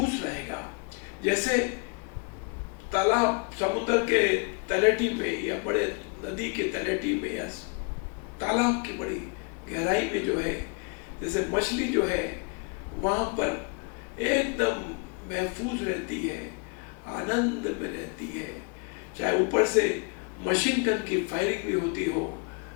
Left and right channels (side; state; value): right; quieter; 34.5 dB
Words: रहेगा। जैसे तालाब समुद्र के तलहटी में या बड़े नदी के तलहटी में या तालाब की बड़ी गहराई में जो है, जैसे मछली जो है वहां पर एकदम महफूज रहती है, आनंद में रहती है, चाहे ऊपर से मशीन गन की फायरिंग भी होती हो